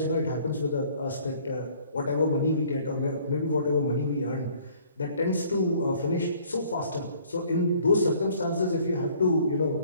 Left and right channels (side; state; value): both; inverted; correlation -0.57